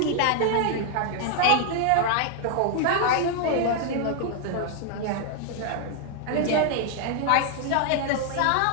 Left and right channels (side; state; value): both; different; correlation 0.00